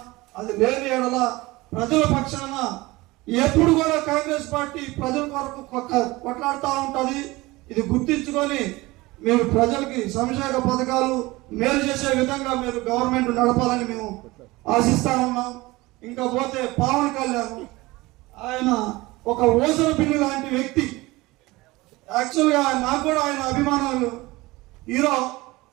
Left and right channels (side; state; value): left; quieter; 20.9 dB